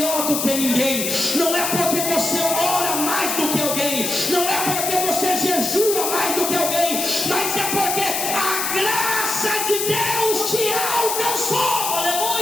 do que ninguém, não é porque você ora mais do que alguém, não é porque você jejua mais do que alguém, mas é porque a graça de Deus te alcançou.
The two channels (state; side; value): noise; left; hiss, 1 dB below the sound